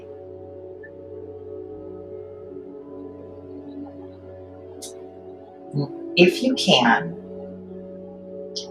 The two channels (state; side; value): identical; both; correlation 1.00